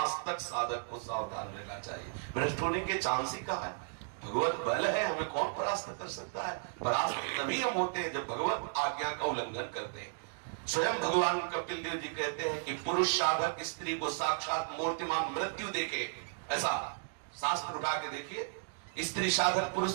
तक साधक को सावधान रहना चाहिए। भ्रष्ट होने के चांस ही कहा है? भगवत बल है, हमें कौन परास्त कर सकता है? परास्त तभी हम होते हैं जब भगवत आज्ञा का उल्लंघन करते हैं। स्वयं भगवान कपिल देव जी कहते हैं कि पुरुष साधक स्त्री को साक्षात मूर्तिमान मृत्यु देखे। ऐसा शास्त्र उठा के देखिए, स्त्री साधक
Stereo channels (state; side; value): silent; left; digital silence